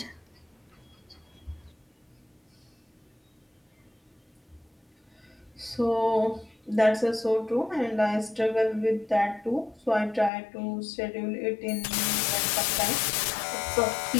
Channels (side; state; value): right; drops out; at 10.3 s